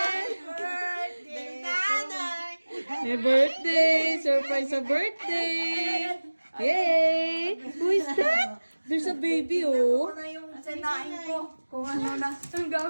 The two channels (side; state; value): both; inverted; correlation -1.00